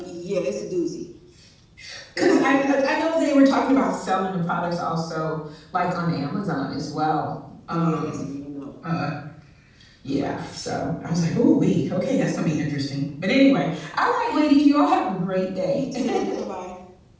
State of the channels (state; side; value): identical; both; correlation 1.00